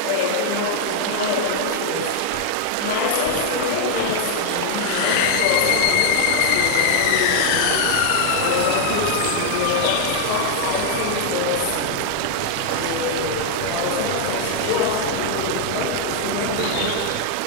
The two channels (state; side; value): different; both; correlation 0.00